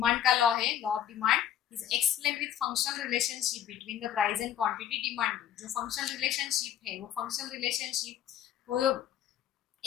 का लॉ है, law of demand is explain with functional relationship between the price and quantity demand. जो फंक्शनल रिलेशनशिप है वो फंक्शनल रिलेशनशिप को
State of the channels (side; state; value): right; quieter; 10.4 dB